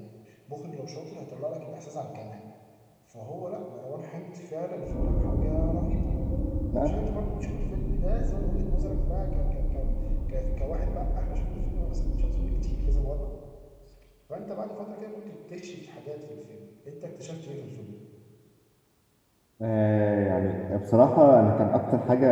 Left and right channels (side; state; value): both; identical; correlation 1.00